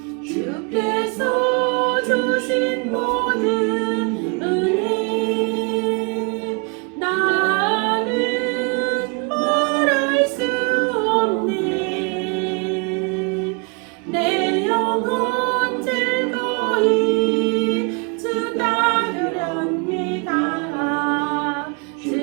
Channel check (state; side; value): quieter; left; 34.0 dB